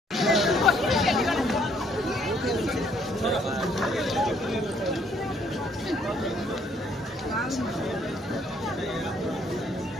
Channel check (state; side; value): normal; both; correlation 0.66